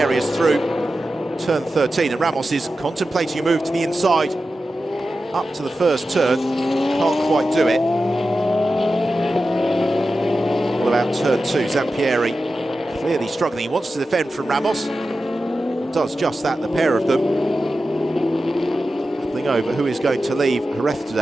through turn 13, and Ramos is contemplating a move to the inside up to the first turn. Can't quite do it. What about turn 2? Zampieri clearly struggling. He wants to defend from Ramos. Does just that, the pair of them. Battling over who is going to leave Jerez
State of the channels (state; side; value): normal; both; correlation 0.92